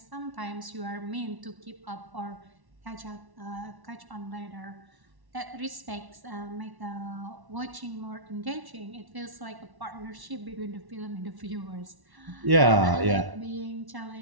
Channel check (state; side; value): late; left; 1.1 ms